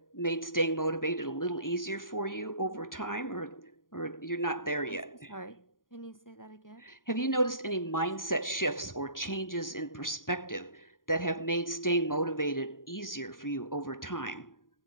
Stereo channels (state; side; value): late; right; 0.90 ms